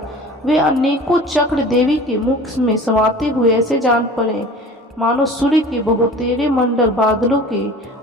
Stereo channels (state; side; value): normal; both; correlation 0.41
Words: वे अनेकों चक्र देवी के मुख में समाते हुए ऐसे जान पड़े मानो सूर्य के बहुतेरे मंडल बादलों के